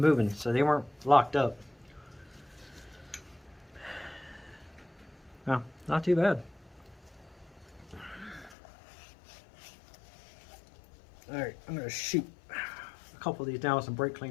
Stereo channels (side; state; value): right; drops out; at 8.6 s